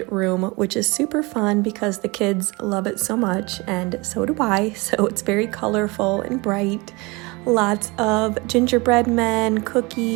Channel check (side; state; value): left; quieter; 25.5 dB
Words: room, which is super fun because the kids love it so much and so do I. So it's very colorful and bright. Lots of gingerbread men,